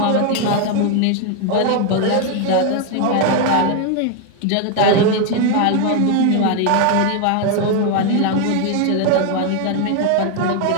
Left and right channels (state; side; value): different; both; correlation 0.01